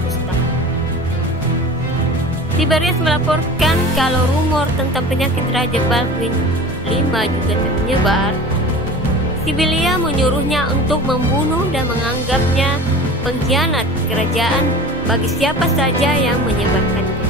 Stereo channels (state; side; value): normal; both; correlation 0.37